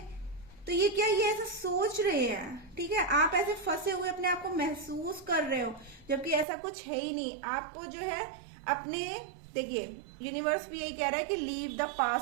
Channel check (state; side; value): drops out; left; at 6.5 s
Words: तो ये क्या, ये ऐसा सोच रहे हैं, ठीक है, आप ऐसे फंसे हुए अपने आप को महसूस कर रहे हो, जबकि ऐसा कुछ है ही नहीं। आपको जो है अपने, देखिए यूनिवर्स भी यही कह रहा है कि लीव द